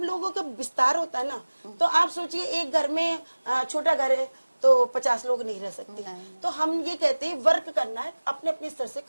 लोगों का विस्तार होता है ना, तो आप सोचिए एक घर में छोटा घर है तो 50 लोग नहीं रह सकते। तो हम ये कहते हैं वर्क करना है, अपने अपने स्तर से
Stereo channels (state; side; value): inverted; both; correlation -1.00